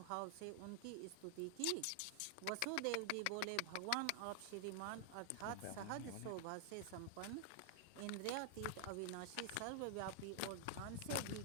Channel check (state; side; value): different; both; correlation 0.00